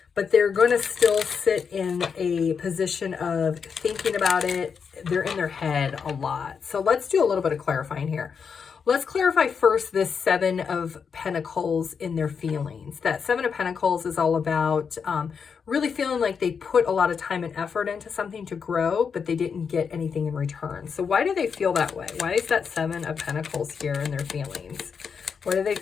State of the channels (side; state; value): right; quieter; 6.2 dB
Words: but they're going to still sit in a position of thinking about it. they're in their head a lot. So let's do a little bit of clarifying here. Let's clarify first this Seven of Pentacles in their feelings. That Seven of Pentacles is all about really feeling like they put a lot of time and effort into something to grow, but they didn't get anything in return. So why do they feel that way? Why is that Seven of Pentacles here in their feelings? Why do they